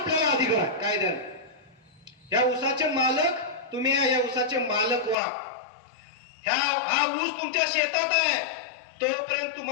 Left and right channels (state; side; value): drops out; right; at 5.2 s